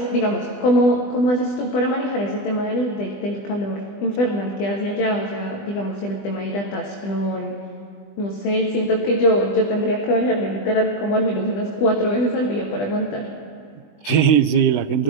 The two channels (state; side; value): late; right; 20 ms